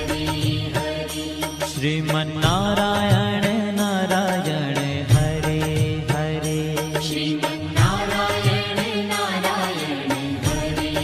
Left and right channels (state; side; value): identical; both; correlation 1.00